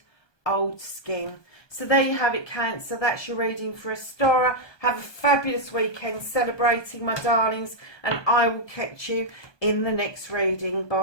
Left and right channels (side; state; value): right; late; 1.2 ms